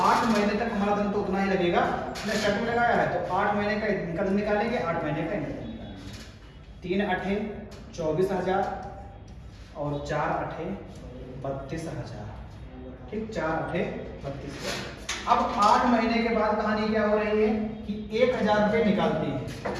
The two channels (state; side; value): identical; both; correlation 1.00